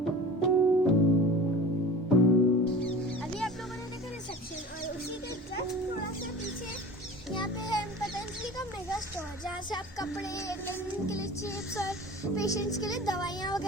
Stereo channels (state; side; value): normal; both; correlation 0.39